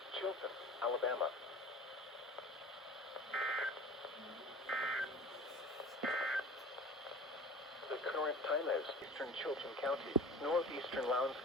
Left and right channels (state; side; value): normal; both; correlation 0.40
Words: Chilton, Alabama. The current time is Eastern Chilton County, Northeastern Lowndes